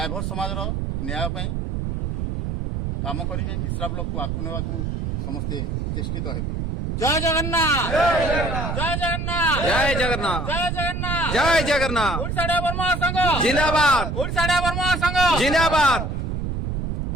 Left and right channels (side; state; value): right; noise; rumble, 2 dB below the sound